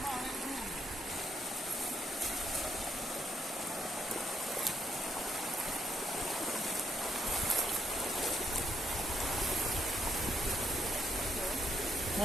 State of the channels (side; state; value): both; normal; correlation 0.75